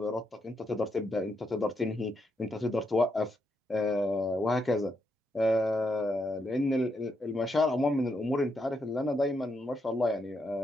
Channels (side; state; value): both; normal; correlation 0.80